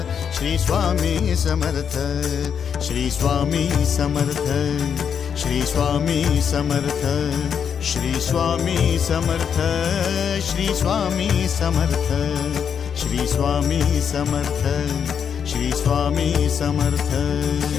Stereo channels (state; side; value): quieter; right; 7.5 dB